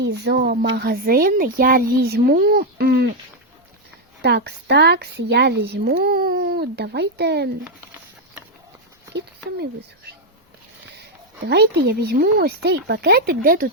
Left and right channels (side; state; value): both; normal; correlation 0.01